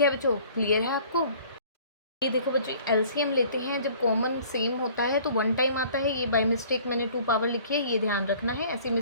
है बच्चों, क्लियर है आपको? ये देखो बच्चों, एलसीएम लेते हैं जब कॉमन सेम होता है तो 1 टाइम आता है। ये बाय मिस्टेक मैंने 2 पावर लिखी है, ये ध्यान रखना है, ऐसी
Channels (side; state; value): both; inverted; correlation -0.52